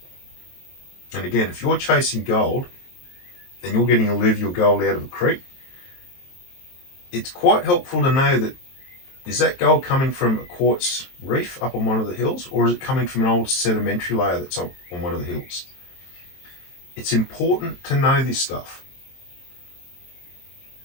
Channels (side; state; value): right; late; 23 ms